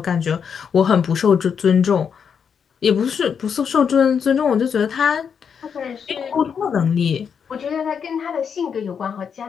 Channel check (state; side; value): quieter; right; 7.0 dB